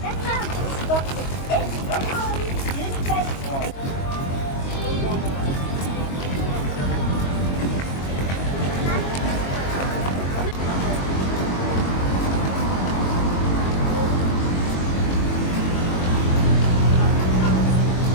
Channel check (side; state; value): right; late; 22 ms